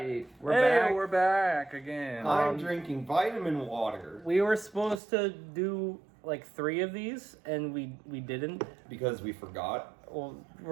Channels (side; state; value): left; drops out; at 5.0 s